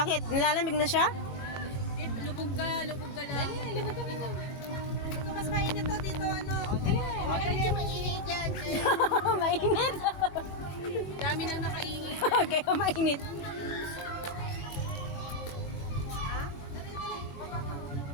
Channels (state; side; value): late; right; 22 ms